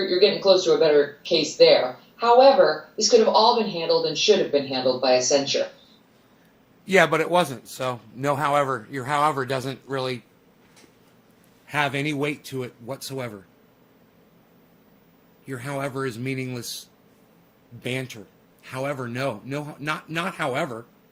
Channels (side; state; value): both; identical; correlation 1.00